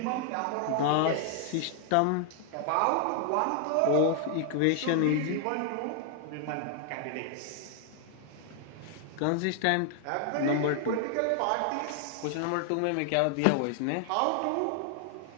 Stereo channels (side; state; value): both; different; correlation 0.00